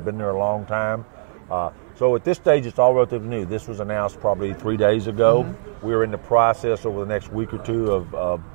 been there a long time. So at this stage, it's all relatively new. This was announced probably 3 days ago. We're in the process over the next week or two of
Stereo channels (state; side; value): silent; left; 63 dB below the other